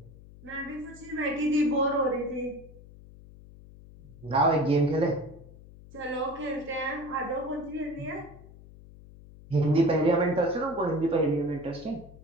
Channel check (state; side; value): noise; left; hum, 20 dB below the sound